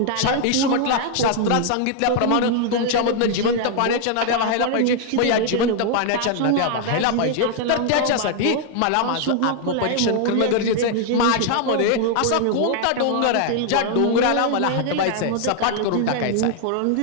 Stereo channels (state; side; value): different; both; correlation 0.00